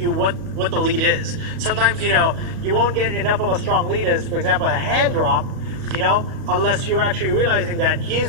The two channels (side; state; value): left; late; 38 ms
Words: what the lead is. Sometimes, you won't get enough of a strong lead as, for example, a hand drop, unless you're actually realizing that